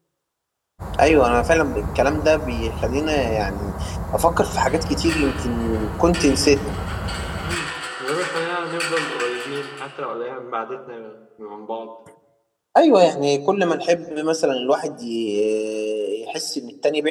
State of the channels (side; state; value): both; identical; correlation 1.00